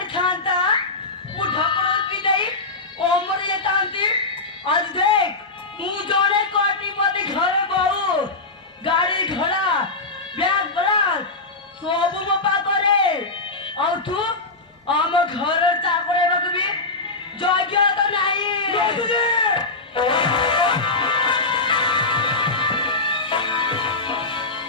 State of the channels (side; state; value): right; quieter; 3.4 dB